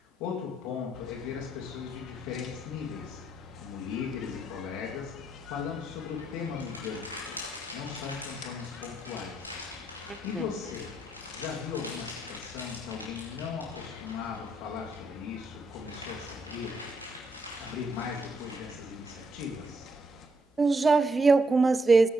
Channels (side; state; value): both; normal; correlation 0.75